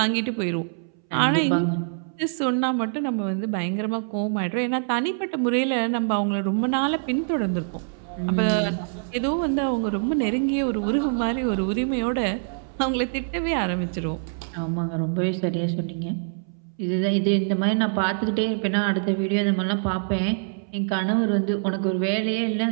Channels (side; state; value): left; silent; 62 dB below the other